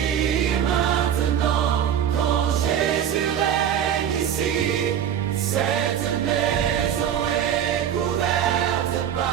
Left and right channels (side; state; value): left; quieter; 9.5 dB